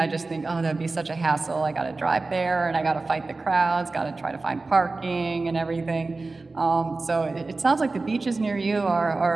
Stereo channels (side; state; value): left; quieter; 3.6 dB